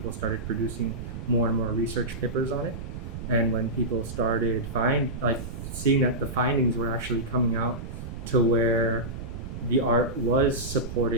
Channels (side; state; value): right; noise; rumble, 9 dB below the sound